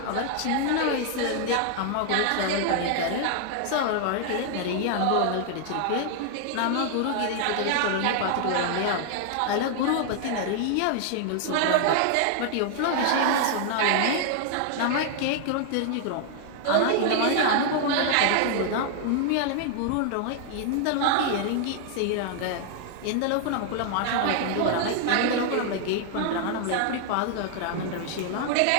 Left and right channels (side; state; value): both; different; correlation 0.00